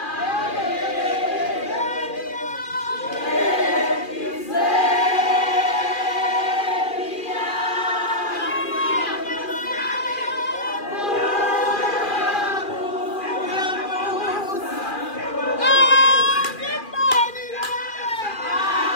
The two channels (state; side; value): late; right; 2.4 ms